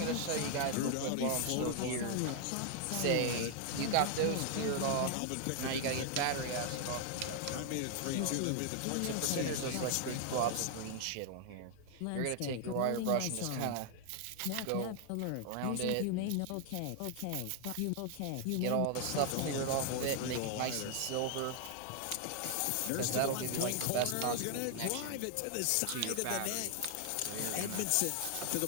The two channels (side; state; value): both; different; correlation 0.00